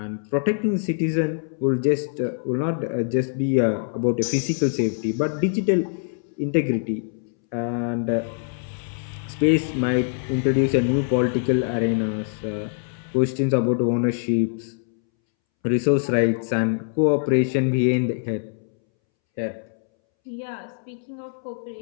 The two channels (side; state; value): right; silent; 63 dB below the other